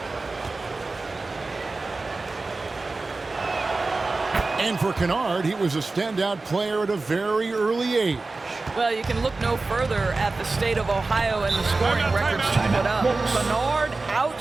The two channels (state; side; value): quieter; left; 3.5 dB